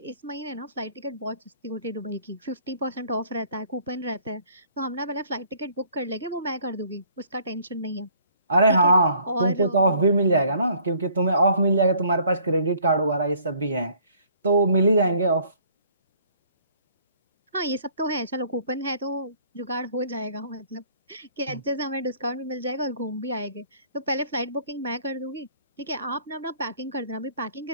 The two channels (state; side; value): inverted; both; correlation -0.58